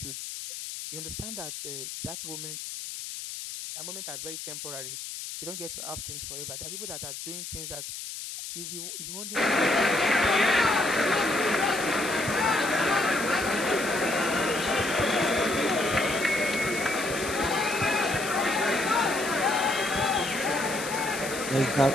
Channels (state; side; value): noise; left; hiss, 8 dB below the sound